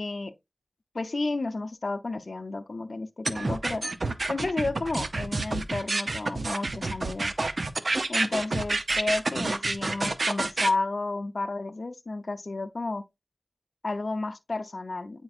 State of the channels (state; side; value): normal; both; correlation 0.95